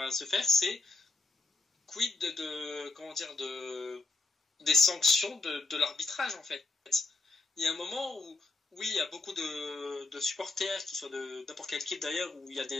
se faire, c'est quid des sanctions de l'arbitrage, en fait. Il y a un moment où, oui, il y a beaucoup de supporters, qui soient de n'importe quelle équipe d'ailleurs, où il y a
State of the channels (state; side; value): quieter; right; 3.4 dB